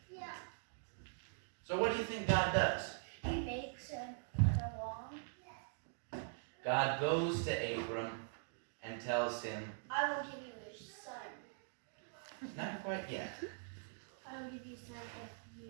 Yeah. So what do you think God does? He makes him along. God goes to Abram and tells him, I will give you a son. not quite yet. I will give you a son if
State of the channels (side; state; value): left; silent; digital silence